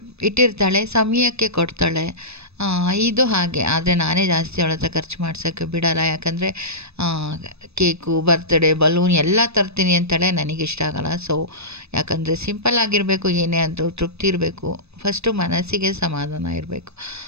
ಇಟ್ಟಿರ್ತಾಳೆ, ಸಮಯಕ್ಕೆ ಕೊಡ್ತಾಳೆ. ಇದು ಹಾಗೆ. ಆದರೆ ನಾನೇ ಜಾಸ್ತಿ ಅವಳ ಹತ್ರ ಖರ್ಚು ಮಾಡ್ಸೋಕ್ಕೆ ಬಿಡಲ್ಲ. ಯಾಕಂದರೆ ಕೇಕು, ಬರ್ತಡೇ, ಬಲೂನ್ ಎಲ್ಲ ತರ್ತೀನಿ ಅಂತಾಳೆ, ನನಗಿಷ್ಟ ಆಗಲ್ಲ. ಸೊ ಯಾಕಂದರೆ ಸಿಂಪಲ್ ಆಗಿರಬೇಕು, ಏನೇ ಆದರೂ ತೃಪ್ತಿ ಇರಬೇಕು, ಫಸ್ಟು ಮನಸ್ಸಿಗೆ ಸಮಾಧಾನ ಇರಬೇಕು.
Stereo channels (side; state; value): left; late; 0.79 ms